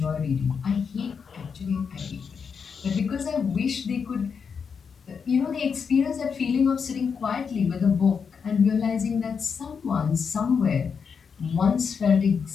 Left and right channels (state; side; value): quieter; right; 6.2 dB